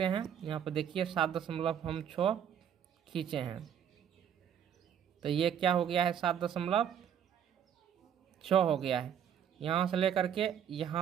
हैं। यहाँ पर देखिए 7.6 खींचे हैं, तो ये क्या हो गया है 7.6 हो गया है। यहाँ से लेकर के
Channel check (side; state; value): left; quieter; 9.0 dB